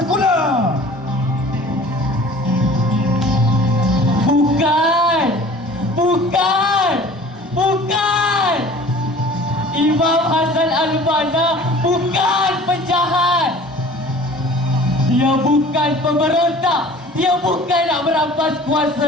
Bukan. Imam Hassan Al-Banna bukan penjahat. Dia bukan pemberontak. Dia bukan nak merampas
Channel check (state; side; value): normal; both; correlation 0.45